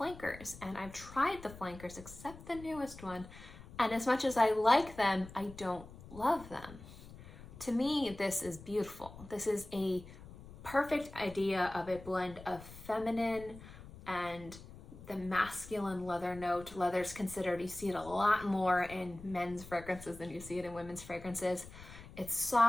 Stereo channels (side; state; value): left; noise; rumble, 16 dB below the sound